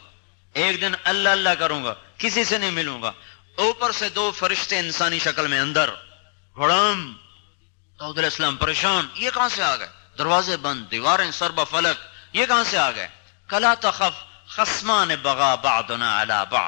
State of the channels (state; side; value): silent; right; digital silence